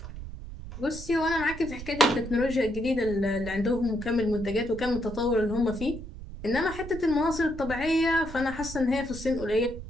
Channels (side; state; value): right; noise; rumble, 11 dB below the sound